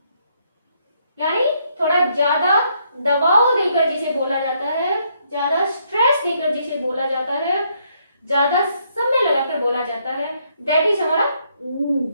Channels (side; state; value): both; inverted; correlation -0.72